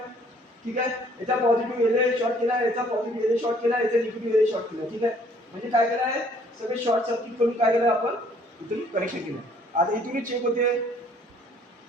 ठीक आहे, याचा पॉझिटिव्ह एलए शॉर्ट केला, याचा पॉझिटिव्ह एलए शॉर्ट केला, याचा निगेटिव्ह एलए शॉर्ट केला. ठीक आहे, म्हणजे काय केलं आहे सगळे शॉर्ट सर्किट करून काय केलं आपण इथून कनेक्शन केलं. आता इथूनच चेक होते.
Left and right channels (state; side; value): normal; both; correlation 0.60